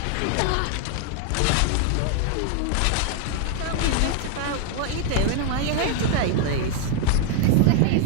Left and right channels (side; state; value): both; different; correlation 0.00